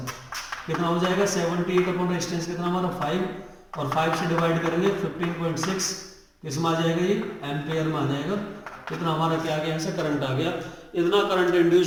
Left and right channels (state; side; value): identical; both; correlation 1.00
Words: कितना हो जाएगा 78 अपॉन रेजिस्टेंस कितना हमारा 5, और 5 से डिवाइड करेंगे 15.6 किस में आ जाएगा, ये एम्पेयर में आ जाएगा। कितना हमारा क्या आ गया, यहाँ से करंट आ गया। इतना करंट